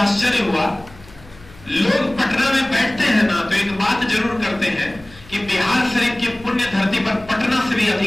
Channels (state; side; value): noise; left; hum, 22 dB below the sound